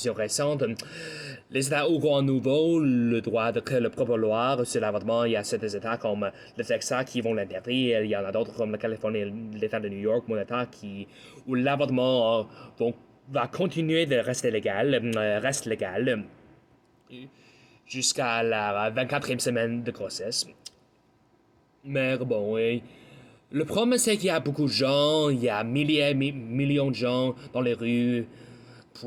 récente, les États auront à nouveau le droit de créer leur propre loi sur l'avortement. Il y a certains États comme le Texas qui vont l'interdire. Il y en a d'autres comme la Californie et l'État de New York, mon État, où l'avortement va continuer de rester légal, reste légal jusqu'à la 24e semaine de grossesse. Mais bon, le problème c'est qu'il y a beaucoup de gens, il y a millions de gens dans les rues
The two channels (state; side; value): identical; both; correlation 1.00